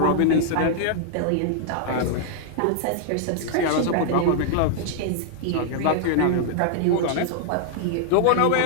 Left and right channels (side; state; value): both; different; correlation -0.01